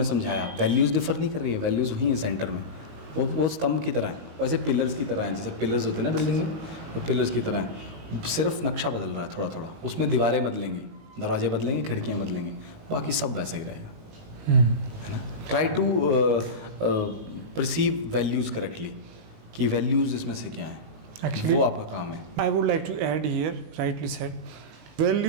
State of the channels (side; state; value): left; late; 19 ms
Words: समझाया. वैल्यूज़ डिफर नहीं कर रही है, वैल्यूज़ वही हैं सेंटर में. वो स्तंभ की तरह है, वैसे पिलर्स की तरह हैं. जैसे पिलर्स होते हैं ना बिल्डिंग में, वो पिलर्स की तरह हैं. सिर्फ नक्शा बदल रहा है थोड़ा थोड़ा, उसमें दीवारें बदलेंगी, दरवाजे बदलेंगे, खिड़कियाँ बदलेंगी, बाकी सब वैसा ही रहेगा. है ना. Try to perceive values correctly, कि वैल्यूज़ इसमें से क्या है. Actually, वो आपका काम है. I would like to add here, rightly said,